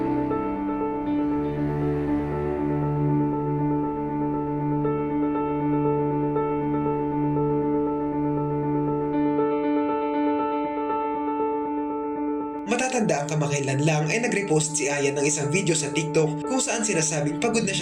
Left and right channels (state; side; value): identical; both; correlation 1.00